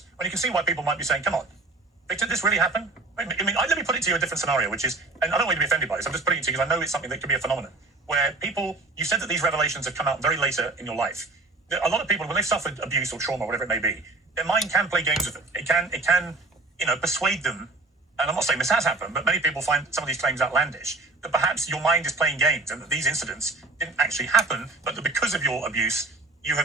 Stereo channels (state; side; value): quieter; left; 3.3 dB